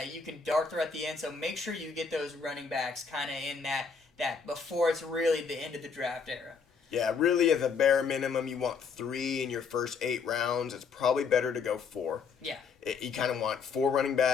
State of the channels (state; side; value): quieter; right; 5.6 dB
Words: you can dart through at the end. So make sure you get those running backs kind of in that before it's really the end of the draft era. Yeah, really, as a bare minimum, you want 3 in your first 8 rounds. It's probably better to go 4. Yeah. You kind of want 4 running